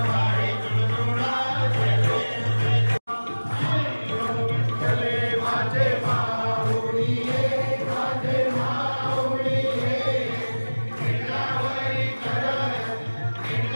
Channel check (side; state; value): both; inverted; correlation -1.00